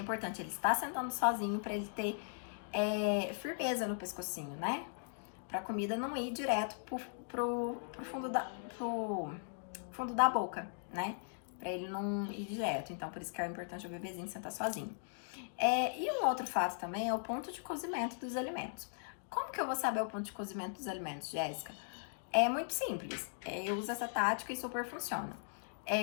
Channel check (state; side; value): silent; right; digital silence